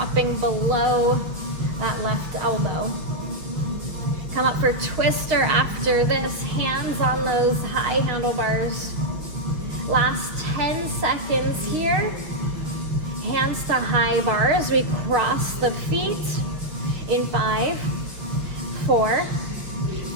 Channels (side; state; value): left; late; 6.2 ms